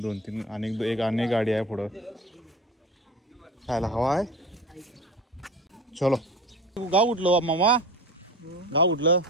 2-3 आणि गाडी आहे पुढं. खायला हवा आहे. चलो. गाव उठलं मामा. गाव उठलं.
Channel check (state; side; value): normal; both; correlation 0.33